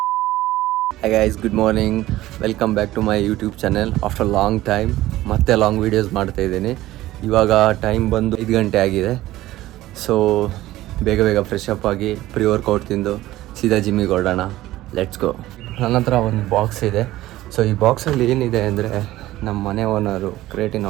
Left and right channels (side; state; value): left; quieter; 15.9 dB